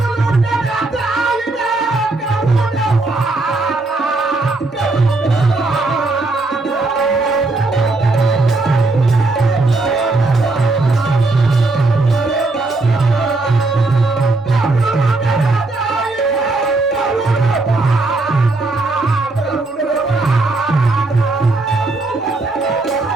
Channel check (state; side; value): quieter; left; 3.2 dB